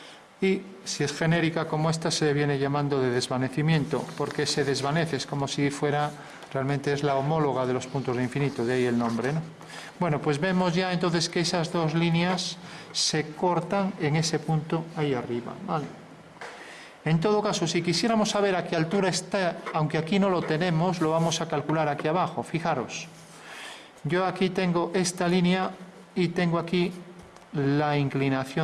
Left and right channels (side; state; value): both; identical; correlation 1.00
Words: Y si es genérica como esta, se viene llamando de desvanecimiento, porque se desvanece, es como si fuera, realmente es la homóloga de los puntos de infinito, de ahí el nombre, ¿no? Bueno, pues vemos ya entonces que esas dos líneas se cortan en ese punto ahí arriba, ¿vale? En todo caso, si quisiéramos saber a qué altura está, aunque aquí no lo tenemos, lo vamos a calcular aquí abajo. Fijaros, yo aquí tengo esta línea y tengo aquí la